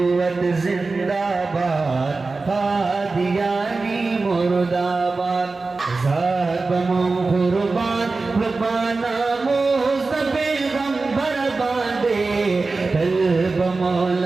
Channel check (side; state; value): left; quieter; 3.8 dB